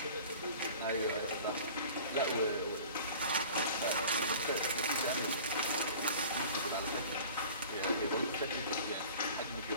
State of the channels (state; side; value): inverted; both; correlation -0.43